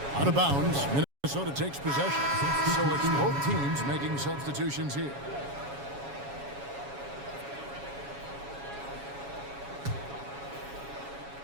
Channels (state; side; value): late; left; 7.2 ms